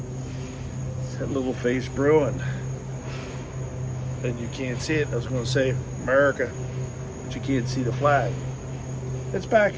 It's that Little Face Brewing. And you can't see it. I was going to say America, but you can't see the flag. It's back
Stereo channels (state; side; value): identical; both; correlation 1.00